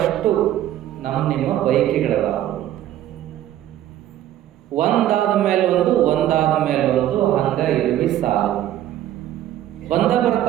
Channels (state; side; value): quieter; left; 12.5 dB